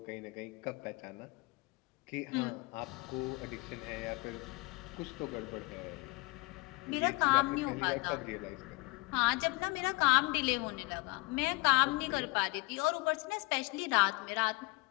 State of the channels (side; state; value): right; quieter; 25.5 dB